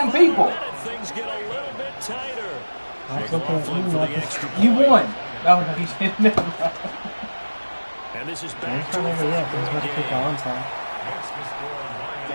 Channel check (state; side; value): inverted; both; correlation -1.00